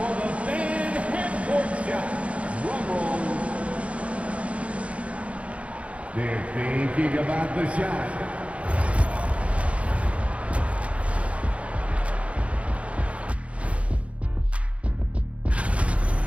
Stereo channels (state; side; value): late; left; 0.063 ms